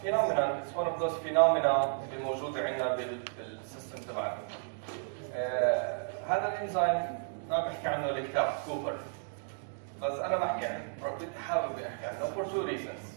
it's one of those phenomena اللي موجوده عندنا بالسيستم تبعنا. هذا الانزيم ما بحكي عنه الكتاب كوبر، بس انا بحكي عنه، بدي احاول احكي عنه for two reasons.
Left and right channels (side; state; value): left; silent; digital silence